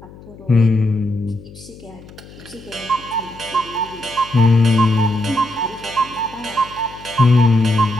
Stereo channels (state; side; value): noise; left; hum, 20 dB below the sound